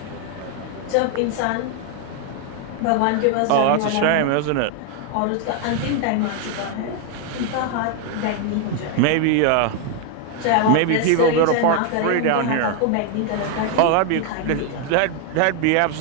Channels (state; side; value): different; both; correlation 0.01